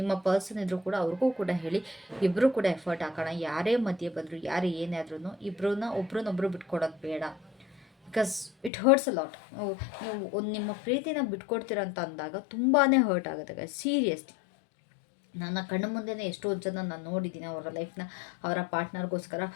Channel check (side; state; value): right; drops out; at 8.7 s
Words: ಪರ್ಸನ್ ಇದ್ರೂ ಕೂಡ ಅವ್ರಿಗೂ ಕೂಡ ಹೇಳಿ, ಇಬ್ಬರೂ ಕೂಡ ಎಫರ್ಟ್ ಹಾಕೋಣ. ಯಾರೇ ಮಧ್ಯೆ ಬಂದರು, ಯಾರೇ ಏನೇ ಆದ್ರೂ ಒಬ್ರನ್ನೊಬ್ರು ಬಿಟ್ಕೊಡೋದು ಬೇಡ. Because it hertz a lot. ನೀವು ಒಂದು ನಿಮ್ಮ ಪ್ರೀತಿನ ಬಿಟ್ಕೊಡ್ತೀರ ಅಂತ ಅಂದಾಗ ತುಂಬಾ ಹರ್ಟ್ ಆಗುತ್ತೆ ಸೀರಿಯಸ್ಲಿ. ನನ್ನ ಕಣ್ಣು ಮುಂದೆನೇ ಎಷ್ಟೋ ಜನ ನಾನು ನೋಡಿದ್ದೀನಿ ಅವರ ಲೈಫ್ನ ಅವರ ಪಾರ್ಟ್ನರ್ಗೋಸ್ಕರ